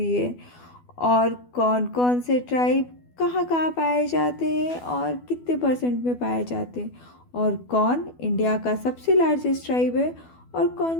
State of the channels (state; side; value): late; right; 12 ms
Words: है और कौन कौन से ट्राइब कहाँ कहाँ पाए जाते हैं और कितने परसेंट में पाए जाते हैं, और कौन इंडिया का सबसे लार्जेस्ट ट्राइब है और कौन